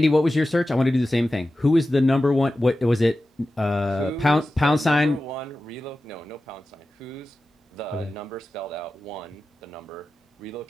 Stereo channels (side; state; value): both; normal; correlation 0.94